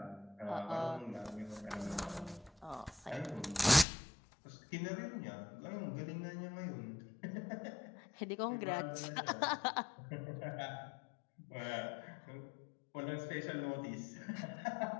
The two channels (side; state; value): right; drops out; at 3.9 s